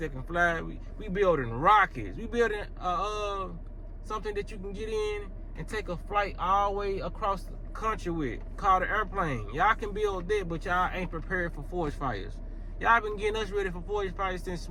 can fly. We building rockets. We building something that you can get in and take a flight all the way across the country with, called an airplane. Y'all can build that, but y'all ain't prepared for forest fires. Y'all been getting us ready for forest fires since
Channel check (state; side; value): identical; both; correlation 1.00